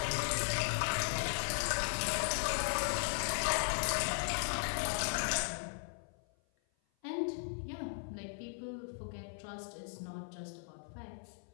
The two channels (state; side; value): silent; right; 53 dB below the other